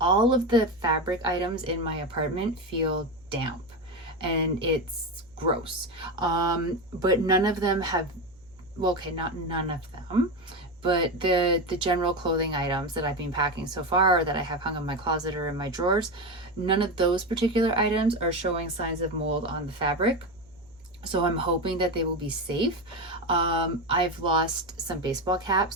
of the fabric items in my apartment feel damp and it's gross. But none of them have, well, okay, not none of them, but the general clothing items that I've been packing so far, or that I have hung in my closet or in my drawers, none of those particular items are showing signs of mold on the fabric. So I'm hoping that they will be safe. I've lost some baseball caps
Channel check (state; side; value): noise; right; hum, 29 dB below the sound